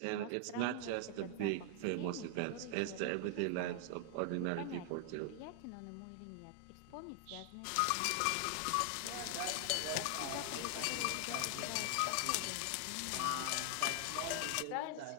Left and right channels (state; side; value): different; both; correlation 0.00